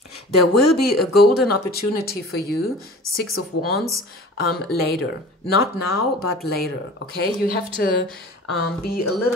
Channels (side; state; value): both; normal; correlation 0.41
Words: There will be a golden opportunity for you, 6 of Wands, later. Not now, but later, okay? You have to be a